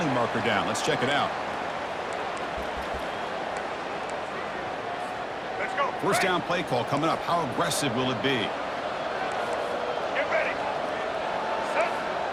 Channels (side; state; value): both; identical; correlation 1.00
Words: marker down. Let's check it out. First down play call coming up. How aggressive will it be? Get ready. Set.